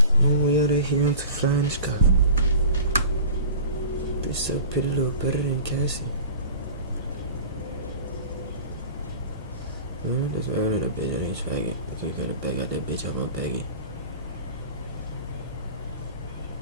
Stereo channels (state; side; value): inverted; both; correlation -0.39